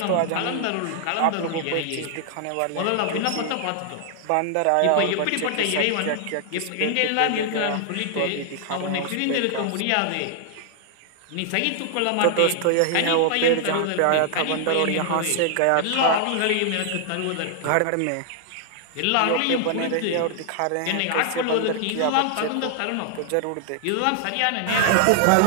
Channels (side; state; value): both; different; correlation 0.00